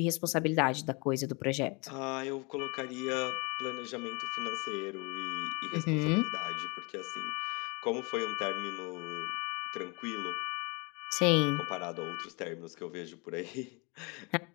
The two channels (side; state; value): right; quieter; 29.8 dB